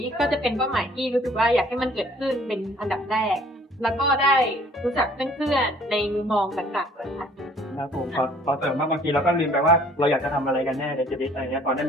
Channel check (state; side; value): normal; both; correlation 0.56